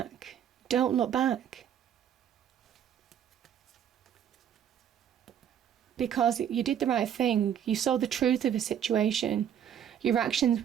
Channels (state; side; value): quieter; left; 9.4 dB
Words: Don't look back. Because you did the right thing. You saw the truth of a situation. Your actions